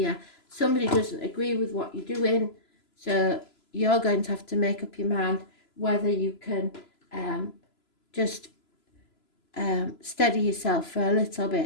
Somebody doesn't agree with what you're doing, so you're going to have to make up your mind whether you can just steady yourself for a little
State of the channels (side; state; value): right; late; 3.0 ms